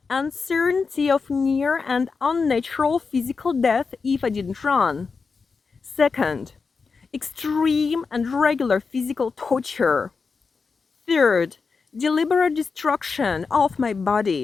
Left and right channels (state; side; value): quieter; right; 4.9 dB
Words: uncertainty of near and unnatural physical death if I didn't run. Second, extreme and regular physical torture. Third, deliberate destruction of my